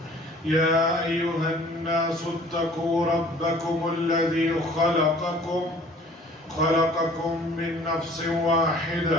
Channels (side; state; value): both; normal; correlation 0.51